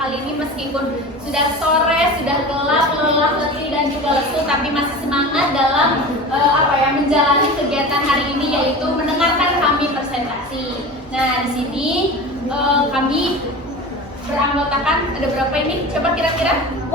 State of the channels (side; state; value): both; normal; correlation 0.33